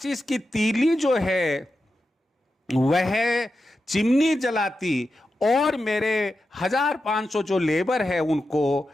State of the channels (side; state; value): both; normal; correlation 0.90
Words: की तीली जो है वह चिमनी जलाती और मेरे 1500 जो लेबर है उनको